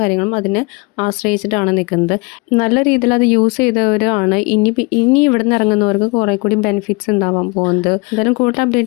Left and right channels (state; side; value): quieter; right; 28.3 dB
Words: കാര്യങ്ങളും അതിനെ ആശ്രയിച്ചിട്ടാണ് നിൽക്കുന്നത്. നല്ല രീതിയിൽ അത് യൂസ് ചെയ്തവരാണ് ഇനി ഇവിടെ നിന്ന് ഇറങ്ങുന്നവർക്ക് കുറേ കൂടി ബെനിഫിറ്റ്സ് ഉണ്ടാവാൻ പോകുന്നത്. എന്തായാലും കൂടുതൽ